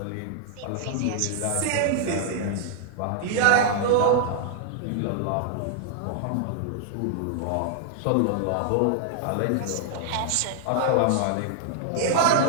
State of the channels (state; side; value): different; both; correlation -0.01